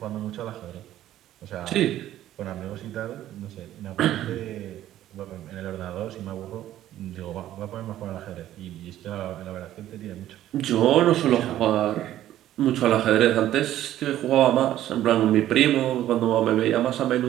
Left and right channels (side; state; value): left; quieter; 12.9 dB